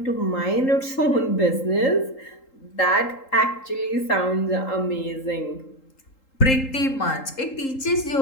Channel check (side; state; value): right; late; 3.8 ms